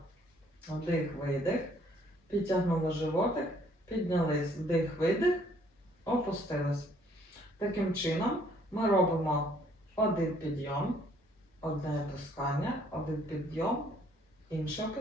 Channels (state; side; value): normal; both; correlation 0.63